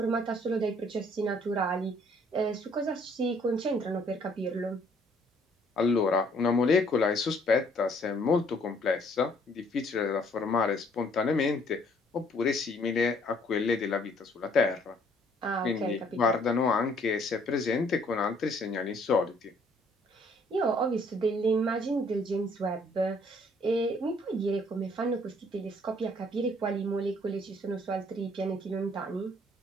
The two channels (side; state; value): both; normal; correlation 0.62